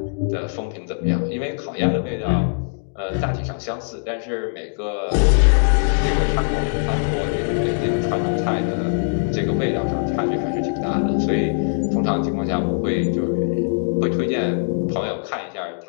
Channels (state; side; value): silent; right; digital silence